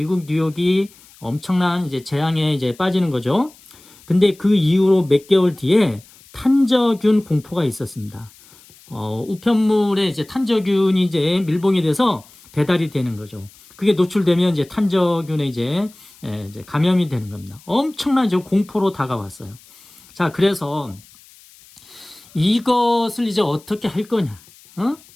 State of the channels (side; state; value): left; noise; hiss, 25 dB below the sound